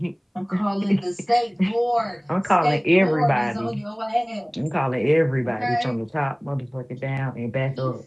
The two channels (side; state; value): both; identical; correlation 1.00